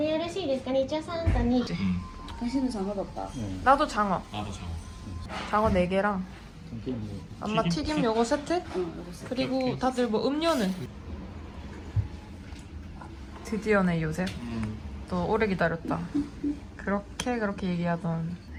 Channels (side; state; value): both; identical; correlation 1.00